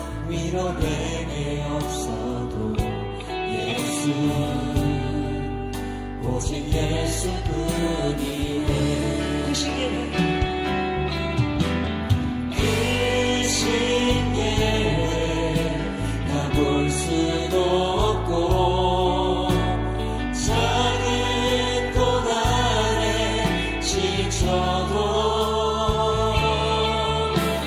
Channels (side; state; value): both; identical; correlation 1.00